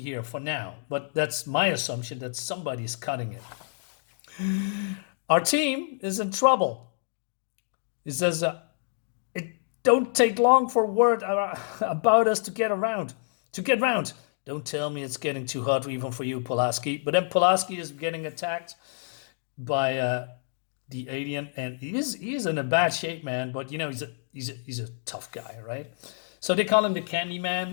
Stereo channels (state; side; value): silent; right; digital silence